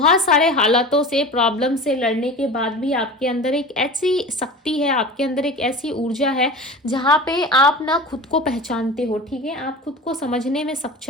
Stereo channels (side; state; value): both; normal; correlation 0.34